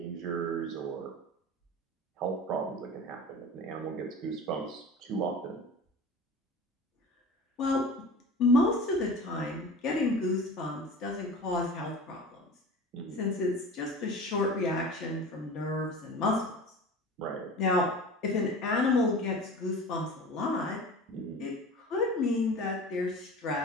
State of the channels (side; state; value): both; normal; correlation 0.36